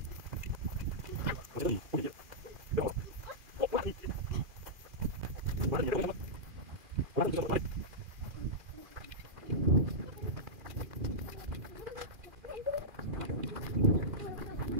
我牵着你，不理解。别跑了，我拉你，我拉你，我拉你。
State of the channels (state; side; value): late; left; 2.4 ms